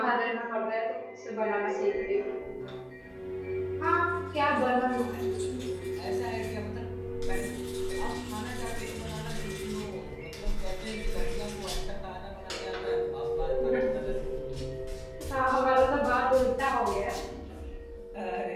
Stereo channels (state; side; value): identical; both; correlation 1.00